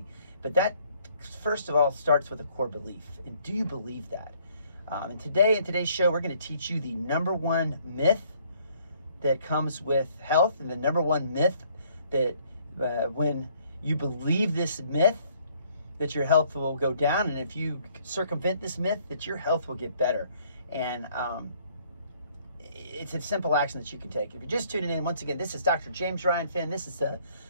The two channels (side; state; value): both; inverted; correlation -0.63